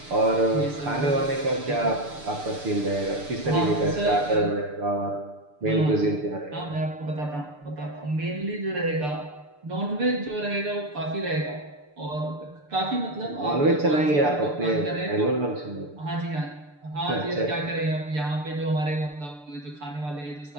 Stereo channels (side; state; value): left; late; 6.8 ms